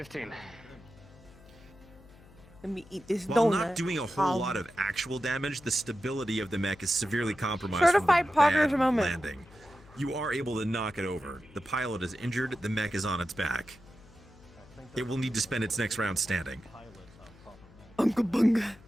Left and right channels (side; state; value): left; noise; hum, 23 dB below the sound